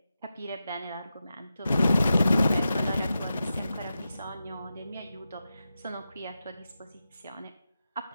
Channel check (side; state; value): both; inverted; correlation -0.90